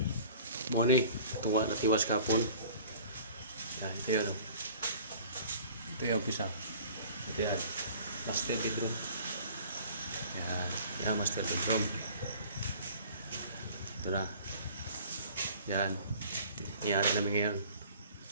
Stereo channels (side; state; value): both; inverted; correlation -0.47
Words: Morning, tuwa na tiwas kapon. Yan, ito yun. Ito yung umpisa. Ito yan. Master bedroom. Yan, yan master bedroom. Ito na. Yan. Iyari namin ngayon.